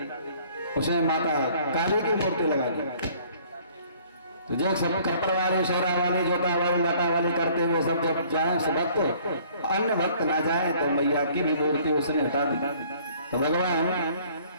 उसने माता काली की मूर्ति लगा दी। तो जो सब कपड़ वाले, शेरा वाले, जोता वाले, लटा वाले करते हुए सब जब जाए भक्त, अन्य भक्त ना जाए, तो मैया की भी मूर्ति उसने हटा दी। तो भगवान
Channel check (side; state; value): both; inverted; correlation -0.57